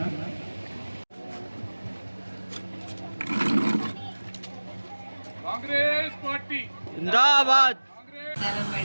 కాంగ్రెస్ పార్టీ జిందాబాద్.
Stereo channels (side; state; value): both; inverted; correlation -1.00